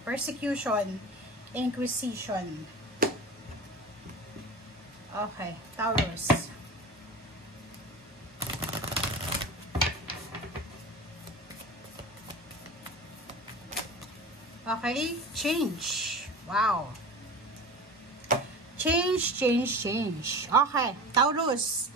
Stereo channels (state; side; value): normal; both; correlation 0.33